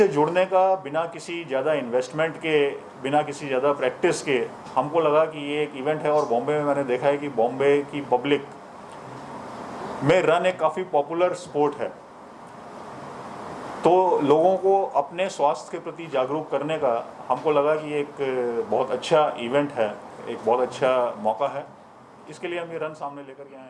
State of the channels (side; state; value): both; identical; correlation 1.00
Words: जुड़ने का बिना किसी ज़्यादा इन्वेस्टमेंट के, बिना किसी ज़्यादा प्रैक्टिस के, हमको लगा कि ये एक इवेंट है। और बॉम्बे में मैंने देखा है कि बॉम्बे की पब्लिक में रन एक काफ़ी पॉपुलर स्पोर्ट है। तो लोगों को अपने स्वास्थ्य के प्रति जागरूक करने का हमको लगा कि एक बहुत अच्छा इवेंट है, एक बहुत अच्छा मौका है। इसके लिए हम ये रन सामने लेकर के आए